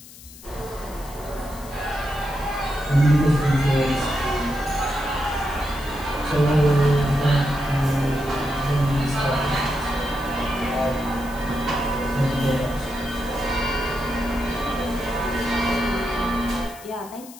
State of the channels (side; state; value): left; noise; hiss, 19 dB below the sound